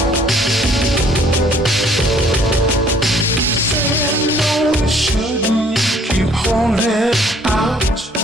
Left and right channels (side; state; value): both; normal; correlation 0.59